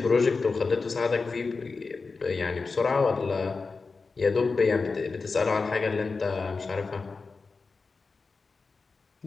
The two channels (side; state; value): right; quieter; 4.3 dB